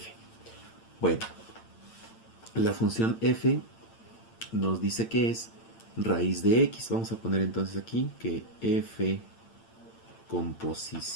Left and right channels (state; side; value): late; right; 8.9 ms